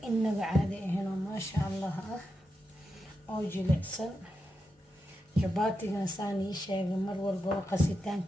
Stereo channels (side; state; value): both; normal; correlation 0.87